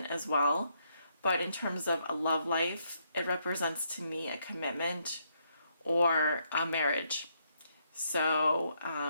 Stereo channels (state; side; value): inverted; both; correlation -0.75